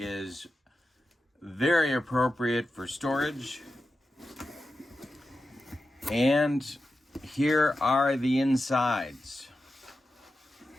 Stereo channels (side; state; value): both; normal; correlation 0.91